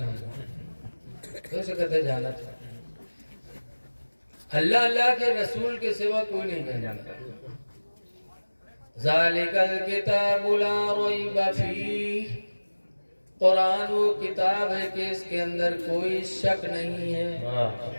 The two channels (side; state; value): both; inverted; correlation -1.00